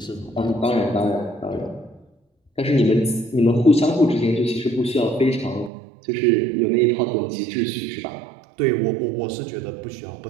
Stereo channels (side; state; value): left; drops out; at 5.7 s